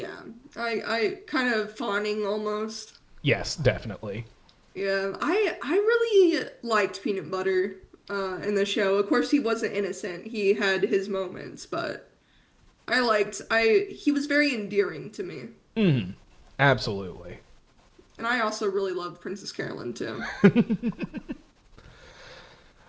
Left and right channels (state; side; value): identical; both; correlation 1.00